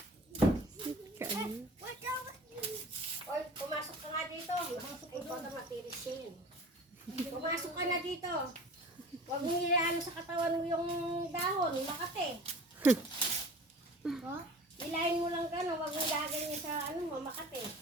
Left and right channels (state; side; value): normal; both; correlation 0.41